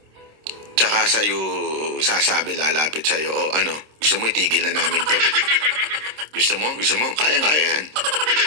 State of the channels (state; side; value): late; left; 26 ms